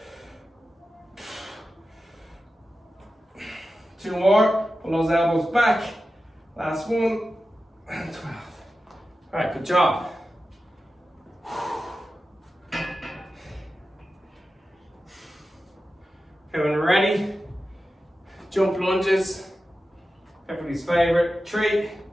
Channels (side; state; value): both; normal; correlation 0.93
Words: Two more, pull those elbows back. Last one, and 12. Alright, good job. Okay, when we're ready, jump lunges. Everybody's favorite. 3,